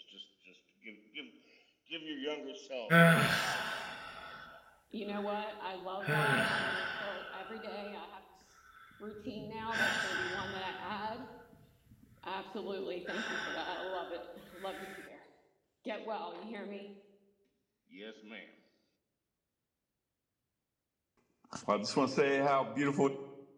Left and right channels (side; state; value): both; identical; correlation 1.00